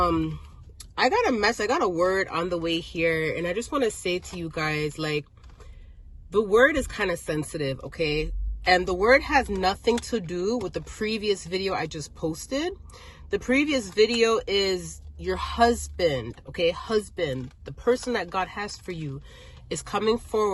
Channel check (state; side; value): identical; both; correlation 1.00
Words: got a word on the way here, and I just want to say to you guys, like, the word is kind of sensitive, okay? And the word has nothing to do with the previous video I just posted. The previous video is your husband, okay? Husband, the person that God has for you, is coming